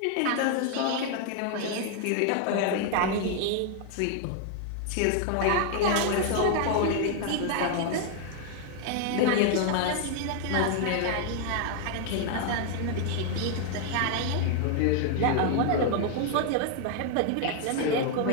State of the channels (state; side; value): different; both; correlation 0.00